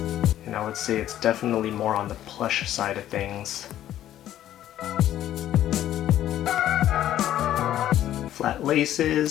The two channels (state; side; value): quieter; right; 12.2 dB